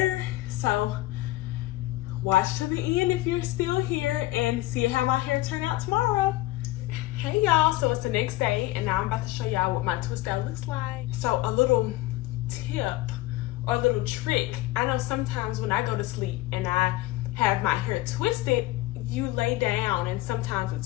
So watch to the end if you're still here and see how my hair turned out tomorrow. Hey y'all, so it's the next day and now I'm about to show y'all what my twist out looks like. So a little tip or a little trick. I know sometimes when I go to sleep and I have my hair twisted, you lay down and sometimes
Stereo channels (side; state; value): right; quieter; 17.7 dB